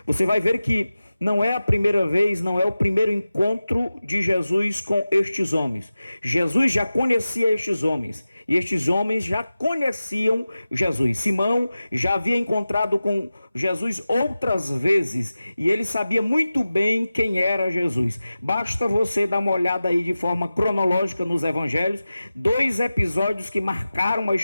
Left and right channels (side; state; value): both; inverted; correlation -0.95